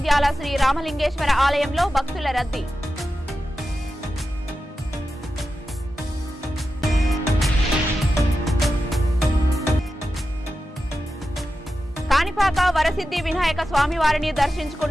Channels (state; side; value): normal; both; correlation 0.91